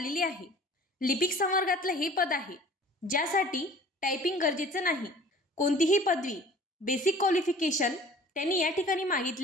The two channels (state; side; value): normal; both; correlation 0.47